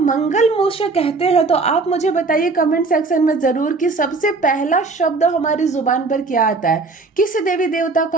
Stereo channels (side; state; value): left; quieter; 3.9 dB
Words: मंगल मूषक कहते हैं तो आप मुझे बताइए कमेंट सेक्शन में जरूर कि सबसे पहला शब्द हमारी जुबान पर क्या आता है, किस देवी देवता